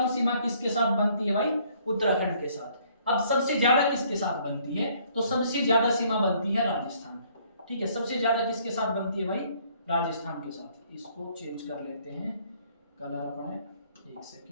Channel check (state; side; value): inverted; both; correlation -0.63